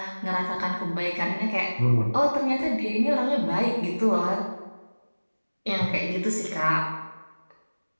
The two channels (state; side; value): inverted; both; correlation -1.00